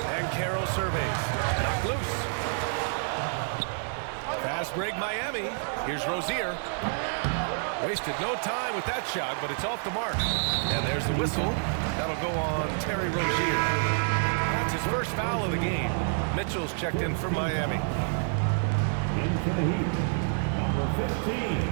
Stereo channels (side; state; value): left; silent; 59 dB below the other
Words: And Carroll surveys. Knocked loose. Fast break Miami. Here's Rozier. Wasted no time with that shot, but it's off the mark. And there's the whistle. That'll go on Terry Rozier. That's his first foul of the game. Mitchell's checked in for Miami. Into the Heat, number